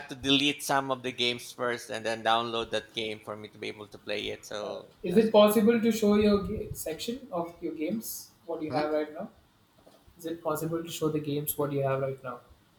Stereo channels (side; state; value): both; identical; correlation 1.00